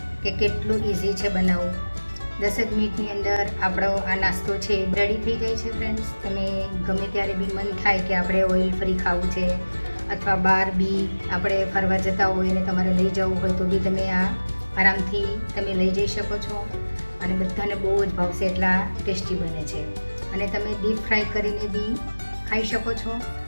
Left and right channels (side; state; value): both; inverted; correlation -1.00